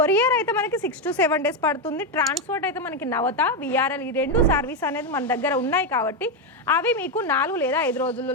అయితే మనకి 6 to 7 days పడుతుంది, ట్రాన్స్పోర్ట్ అయితే మనకి నవత విఆర్ఎల్ ఈ 2 సర్వీస్ అనేది మన దగ్గర ఉన్నాయి కాబట్టి అవి మీకు 4 లేదా 5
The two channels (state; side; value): normal; both; correlation 0.07